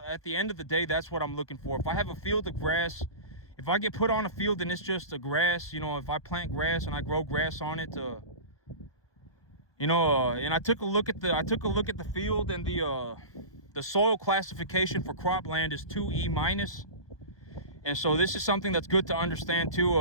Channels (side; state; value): right; late; 1.2 ms